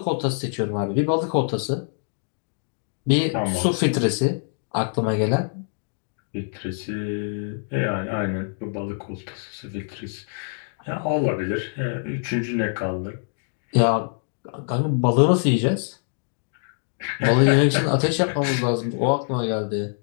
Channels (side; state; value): right; silent; digital silence